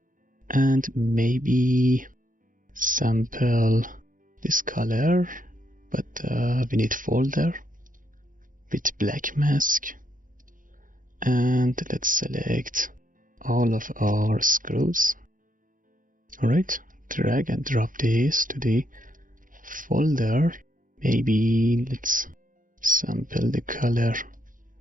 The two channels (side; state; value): left; late; 0.39 ms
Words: and maybe sample this color, but we need folder with black mask, and let's select all of our screws. Alright, drag and drop this to the folder. Maybe let's sample the color